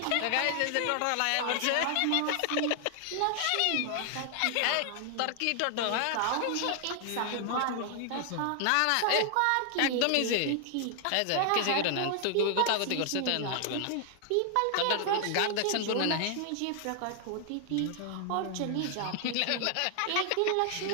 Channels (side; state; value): both; different; correlation 0.00